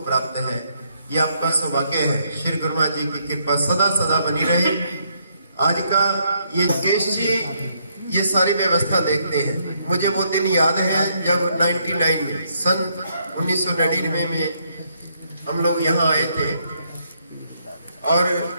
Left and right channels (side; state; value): both; inverted; correlation -0.73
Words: प्राप्त है। ये आपका सौभाग्य है। श्री गुरु महाराज जी की कृपा सदा सदा बनी रहे। आज का ये केश जी ये सारी व्यवस्था देखते हैं। मुझे वो दिन याद है जब 99 में, सन 1999 में हम लोग यहाँ आए थे और